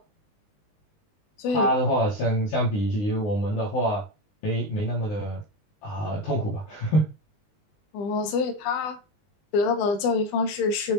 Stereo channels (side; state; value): right; late; 20 ms